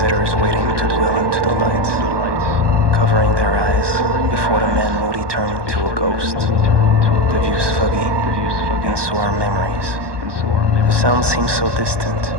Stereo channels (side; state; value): left; late; 1.2 ms